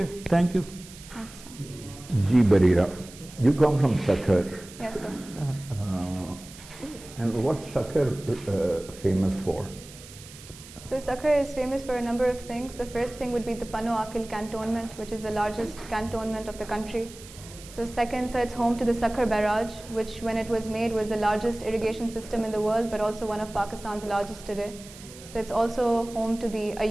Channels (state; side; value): noise; right; hiss, 18 dB below the sound